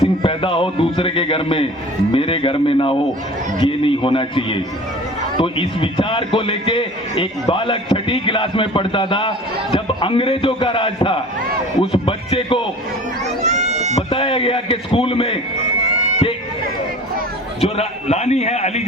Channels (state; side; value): normal; both; correlation 0.42